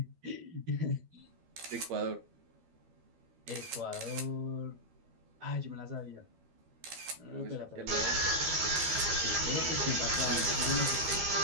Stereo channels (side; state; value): left; late; 12 ms